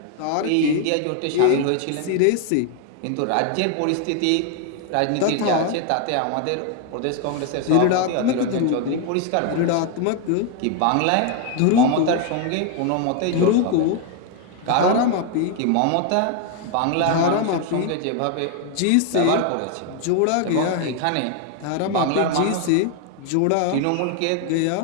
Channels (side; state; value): both; different; correlation 0.01